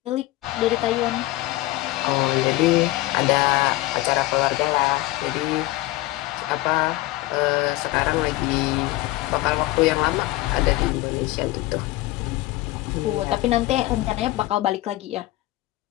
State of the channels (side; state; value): right; quieter; 18.2 dB